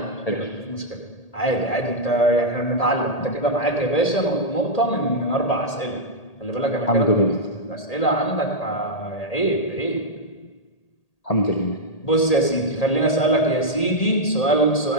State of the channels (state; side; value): late; right; 1.8 ms